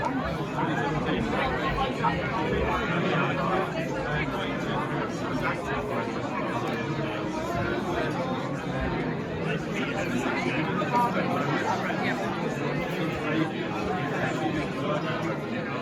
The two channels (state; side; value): identical; both; correlation 1.00